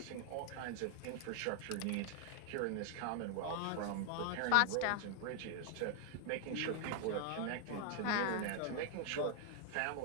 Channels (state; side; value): different; both; correlation 0.00